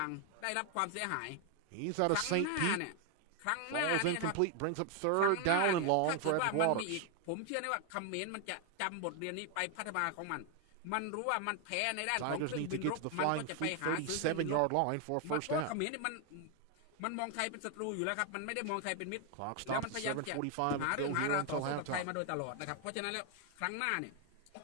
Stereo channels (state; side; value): different; both; correlation 0.01